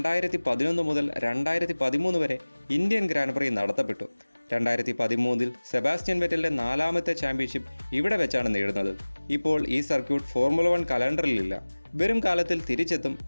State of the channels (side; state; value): both; inverted; correlation -1.00